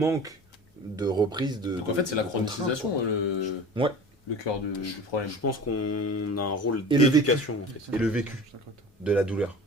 de reprise de. Donc en fait, c'est la de contrainte, chronotisation quoi. le... Ouais. le cœur du problème. Je pense qu'on a un rôle Et le d'éducation en fait. Et le vécu de la douleur,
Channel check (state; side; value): normal; both; correlation 0.37